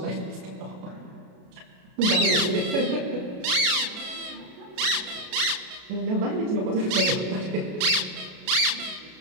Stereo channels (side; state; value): left; late; 33 ms